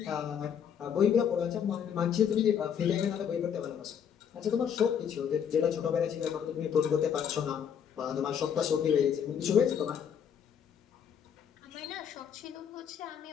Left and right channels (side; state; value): right; quieter; 8.1 dB